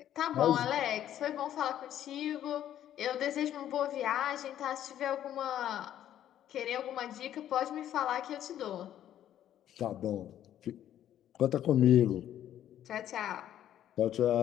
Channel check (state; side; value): quieter; right; 11.3 dB